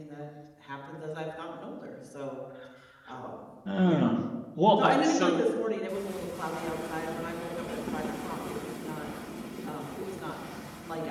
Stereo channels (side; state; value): both; identical; correlation 1.00